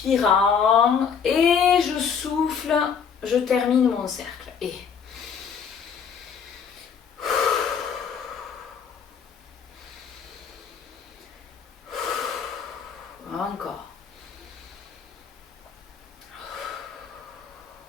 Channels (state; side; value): quieter; right; 6.8 dB